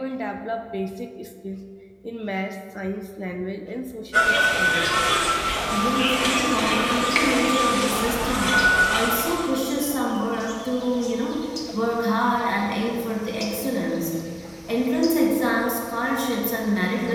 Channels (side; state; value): both; identical; correlation 1.00